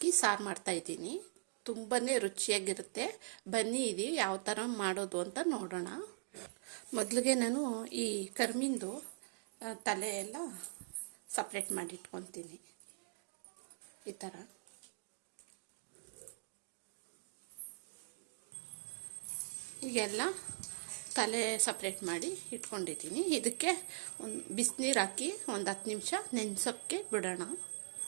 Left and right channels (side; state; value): left; silent; digital silence